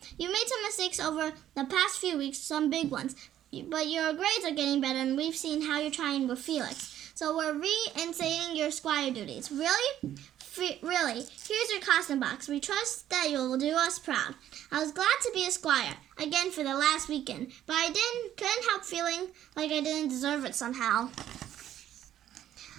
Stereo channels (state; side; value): quieter; left; 11.6 dB